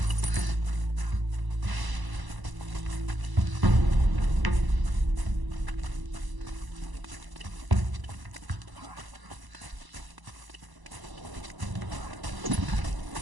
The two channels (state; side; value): late; left; 1.0 ms